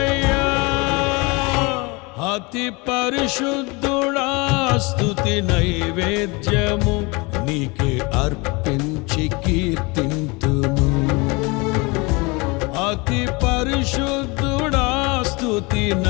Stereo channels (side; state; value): right; quieter; 26.7 dB